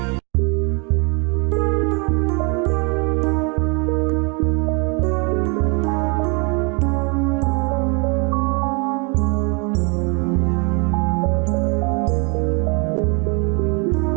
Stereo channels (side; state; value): left; quieter; 32.7 dB